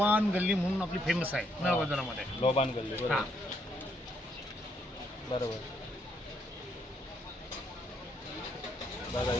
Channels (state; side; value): normal; both; correlation 0.73